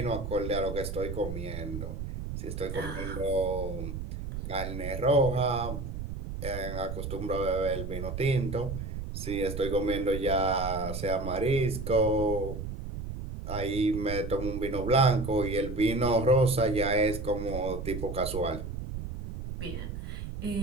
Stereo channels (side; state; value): right; noise; rumble, 6 dB below the sound